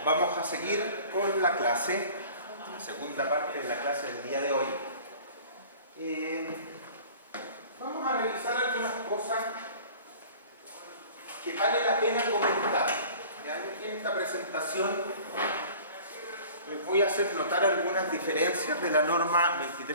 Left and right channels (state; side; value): inverted; both; correlation -0.45